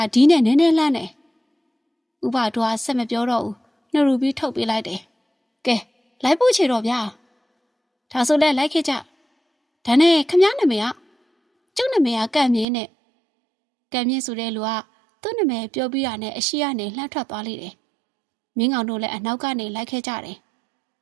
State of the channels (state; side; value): drops out; left; at 12.7 s